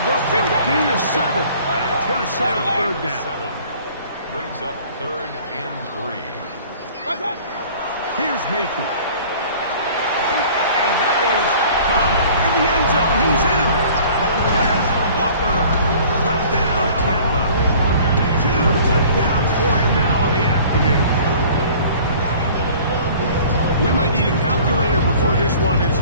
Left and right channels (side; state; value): both; inverted; correlation -0.49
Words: go for a gain of 7. And it's going to set up 3rd down. Brings up 3rd and 3. Here's Mayfield. And that is caught in the end zone. He's in. Has Walker. Touchdown, Tampa. 2 touchdowns for him now in the afternoon. We might need a calculator before this one is